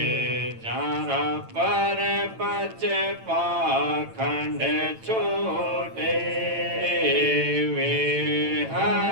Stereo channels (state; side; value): late; left; 8.9 ms